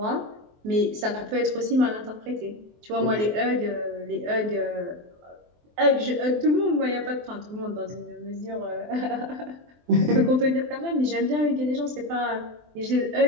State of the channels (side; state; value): left; late; 24 ms